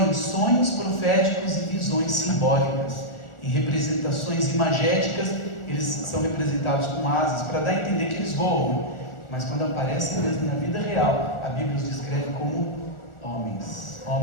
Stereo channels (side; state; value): right; late; 1.4 ms